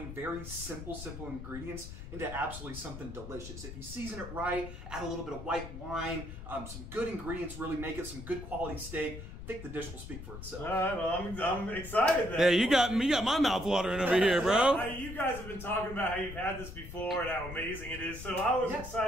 very simple ingredients into absolutely something delicious. If you season it right, add a little bit of white wine, some good ingredients really make it some good quality steak. I think the dish will speak for itself. All right, well, I'm excited then. Hey, you got my mouth watering over here, bro. You guys have been talking about how you've had this before and how amazing it is, so I was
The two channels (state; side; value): noise; left; rumble, 11 dB below the sound